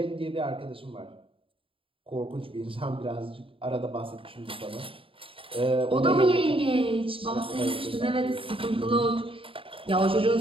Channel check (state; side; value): late; left; 0.26 ms